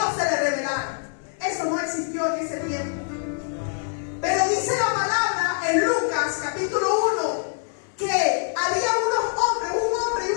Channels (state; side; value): silent; right; 62 dB below the other